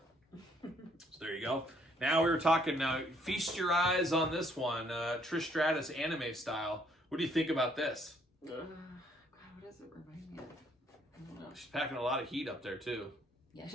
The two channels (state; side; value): normal; both; correlation 0.66